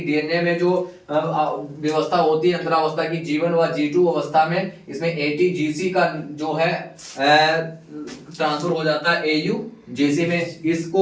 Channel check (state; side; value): identical; both; correlation 1.00